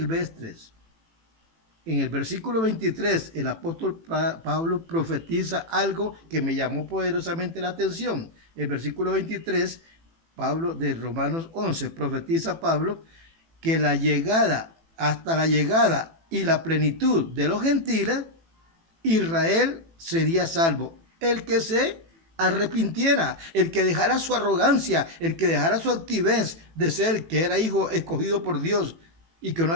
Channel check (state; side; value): late; left; 18 ms